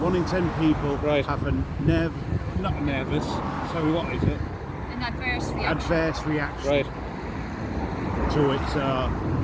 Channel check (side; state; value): both; identical; correlation 1.00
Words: in 10 people have a not nervous. Sorry, what is it? An adverse reaction. Adverse reaction. Right. To it. So